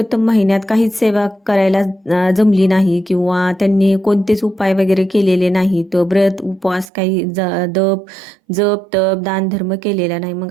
महिन्यात काहीच सेवा करायला जमली नाही किंवा त्यांनी कोणतेच उपाय वगैरे केलेले नाही, तर व्रत उपवास काही जप तप दान धर्म केलेला नाही. मग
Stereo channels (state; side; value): drops out; left; at 6.9 s